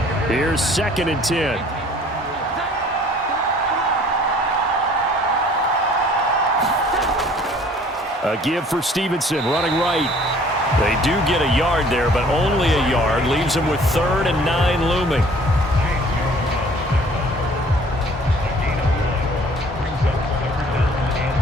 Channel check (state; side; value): normal; both; correlation 0.54